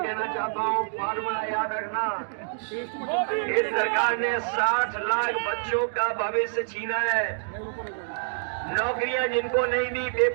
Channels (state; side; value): silent; left; digital silence